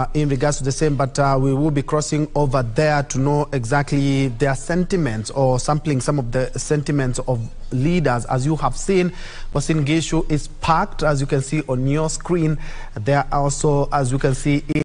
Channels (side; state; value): both; identical; correlation 1.00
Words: in regards to the same, but we will be crossing over there to know exactly their sentiments or sampling some of the sentiments of leaders. As you have seen, Uasin Gishu is packed, as you can see on your screen. There are also, as you can see,